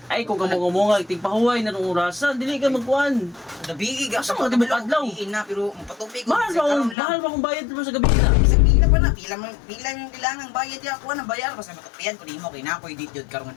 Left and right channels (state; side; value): drops out; right; at 7.0 s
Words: Ay, kung kamunga-munga, tigpahuway na nung orasan, dili ka magkuhan. Gabi ga Asa mga tibok adlaw? na pero magpatupi ko. Mahal ba kung bayad mo sa gabi na? Isang pila pa na, pila yung kailangan bayad ya ako na bayar basta matupian ko nimo kay nakoy dit jud karong